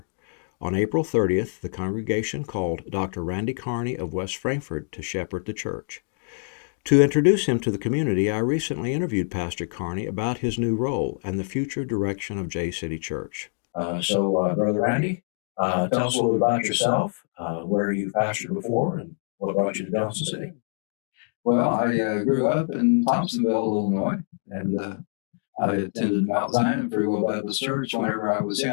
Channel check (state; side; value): silent; right; digital silence